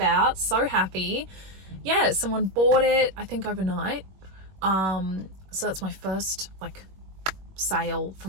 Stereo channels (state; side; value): late; left; 21 ms